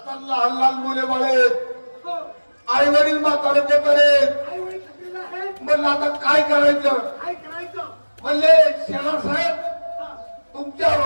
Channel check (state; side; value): inverted; both; correlation -1.00